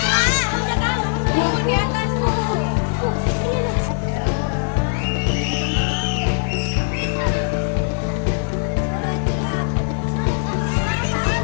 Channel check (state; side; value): silent; right; digital silence